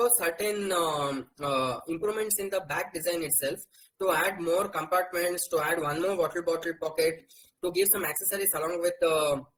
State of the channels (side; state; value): both; identical; correlation 1.00